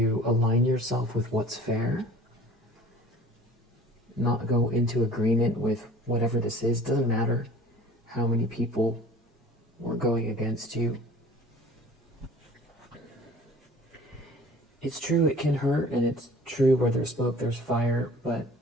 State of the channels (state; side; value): normal; both; correlation 0.46